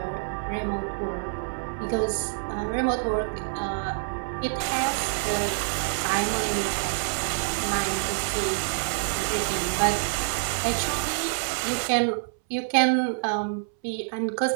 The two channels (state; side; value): silent; left; 60 dB below the other